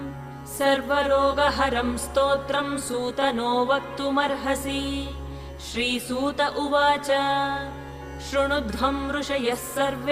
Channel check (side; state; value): both; identical; correlation 1.00